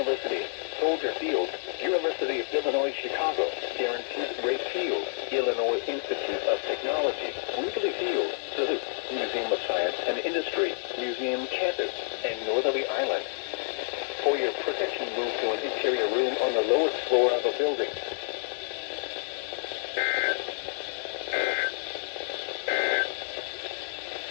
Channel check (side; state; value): right; silent; 59 dB below the other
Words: Soldier Field, University of Illinois Chicago, Guaranteed Rate Field, Illinois Institute of Technology, Wheatley Field, Duluth, Museum of Science and Industry, Museum Campus, and Northerly Island. For your protection, move to an interior room on the lowest floor of a building.